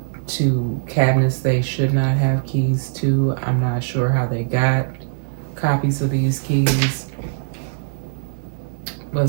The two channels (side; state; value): left; silent; digital silence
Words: to cabinets they should not have keys to. I'm not sure how they got copies of these keys, but